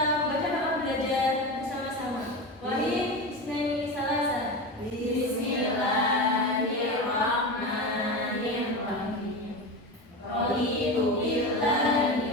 membaca doa belajar bersama-sama. Wahid Isnaini Salasa. Bismillahirrahmanirrahim. Raditu billahi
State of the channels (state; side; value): normal; both; correlation 0.23